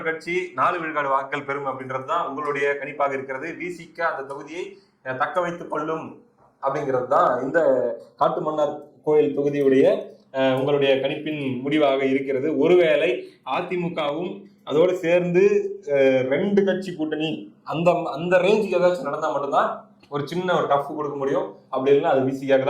கட்சி 4 விழுக்காடு வாக்குகள் பெறும் அப்படின்றது தான் உங்களுடைய கணிப்பாக இருக்கிறது. விசிக அந்த தொகுதியை தக்க வைத்துக் கொள்ளும் அப்படிங்கிறது தான் இந்த காட்டுமன்னார் கோயில் தொகுதியுடைய உங்களுடைய கணிப்பின் முடிவாக இருக்கிறது. ஒருவேளை அதிமுகவும் அதோடு சேர்ந்து 2 கட்சி கூட்டணி அந்த அந்த ரேஞ்சுக்கு ஏதாச்சும் நடந்தா மட்டும்தான் ஒரு சின்ன ஒரு டஃப் கொடுக்க முடியும். அப்படி இல்லைன்னா அது விசிக்காக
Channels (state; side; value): identical; both; correlation 1.00